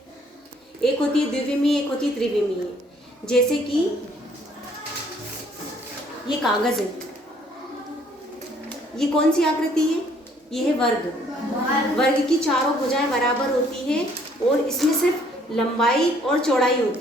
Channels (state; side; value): normal; both; correlation 0.62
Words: एक होती है द्विविमीय, एक होती है त्रिविमीय। जैसे कि ये कागज है, ये कौन सी आकृति है? ये है वर्ग। वर्ग की चारों भुजाएं बराबर होती है और इसमें सिर्फ लंबाई और चौड़ाई